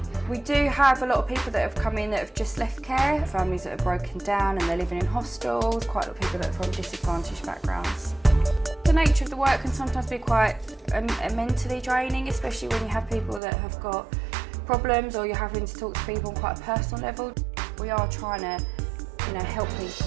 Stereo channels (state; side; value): drops out; left; at 13.4 s